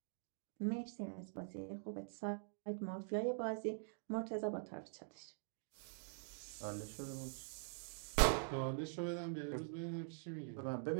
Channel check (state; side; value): silent; left; digital silence